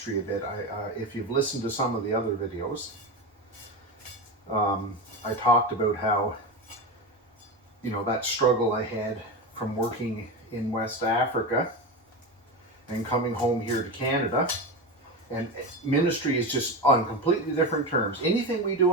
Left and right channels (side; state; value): both; normal; correlation 0.20